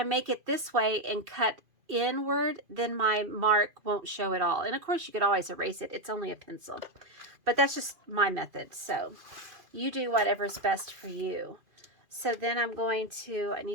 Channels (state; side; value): late; left; 2.5 ms